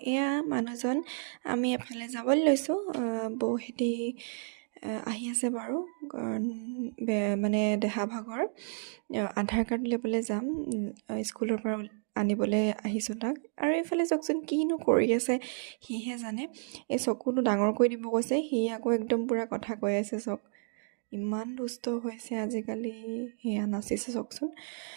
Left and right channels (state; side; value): silent; left; digital silence